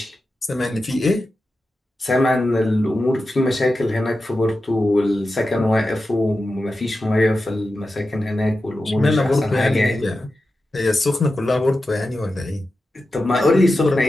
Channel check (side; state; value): both; normal; correlation 0.92